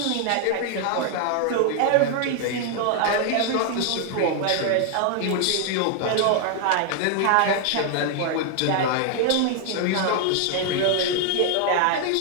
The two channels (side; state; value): both; different; correlation 0.00